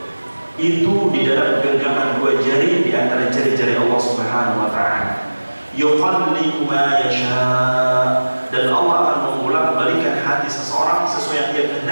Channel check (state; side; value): inverted; both; correlation -1.00